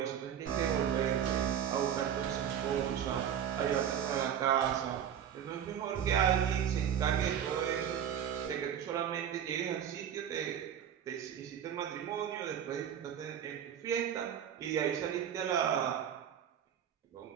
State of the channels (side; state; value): left; quieter; 9.1 dB